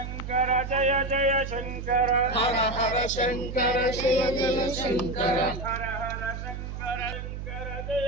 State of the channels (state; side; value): noise; right; hum, 7 dB below the sound